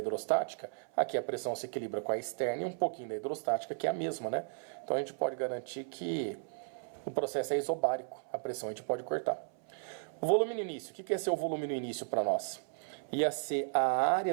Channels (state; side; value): silent; left; 55 dB below the other